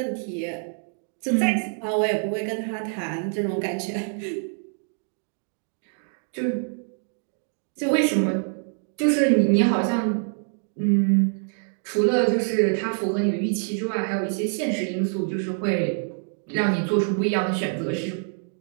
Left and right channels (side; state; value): left; silent; 57 dB below the other